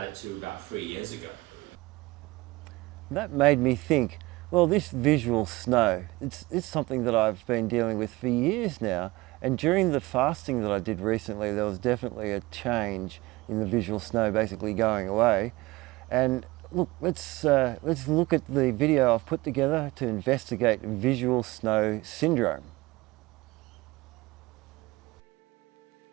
it till about 3 years ago. That made me think, well, this visual snow, it's something that I've been dealing with for years now. And during the fasting that I did recently, there was definitely a change in the visual snow basically going away. And look, let's look at the video I've put together to investigate visual snow syndrome.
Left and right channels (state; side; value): quieter; left; 21.1 dB